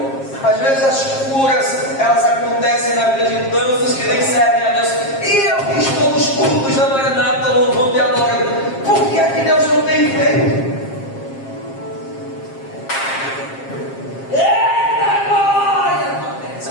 Às vezes as curas, elas acontecem na vida de tantos que nem servem a Deus. E eu que estou nos cultos da Maranata, louvando e adorando. Por que é que Deus não tem feito? Eita glória!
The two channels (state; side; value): late; right; 7.4 ms